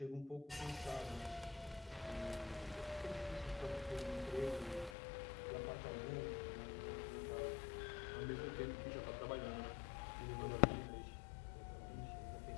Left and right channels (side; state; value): right; drops out; at 5.0 s